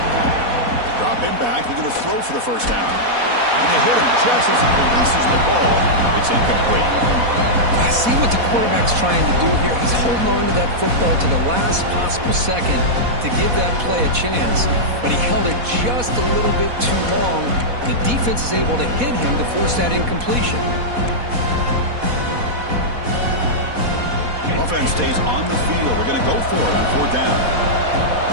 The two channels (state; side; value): late; left; 4.1 ms